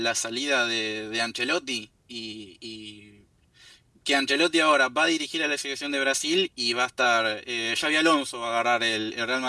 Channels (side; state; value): both; identical; correlation 1.00